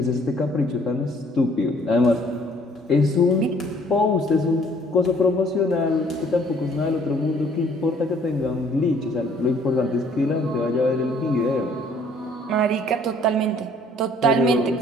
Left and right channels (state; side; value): normal; both; correlation 0.59